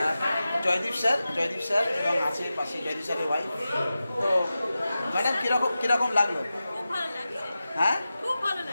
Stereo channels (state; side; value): inverted; both; correlation -0.93